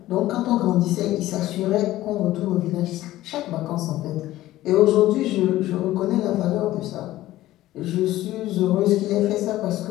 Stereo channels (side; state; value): right; quieter; 15.4 dB